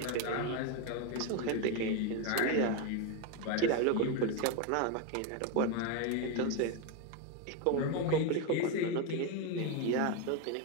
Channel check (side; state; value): both; different; correlation 0.02